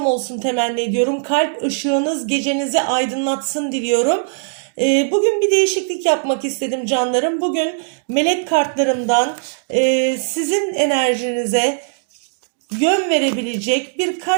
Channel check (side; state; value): left; silent; digital silence